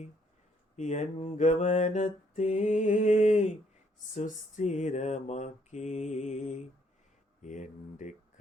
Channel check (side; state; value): both; normal; correlation 0.68